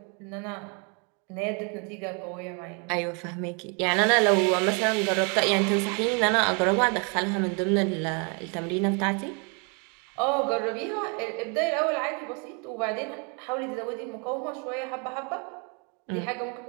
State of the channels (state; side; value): quieter; left; 35.1 dB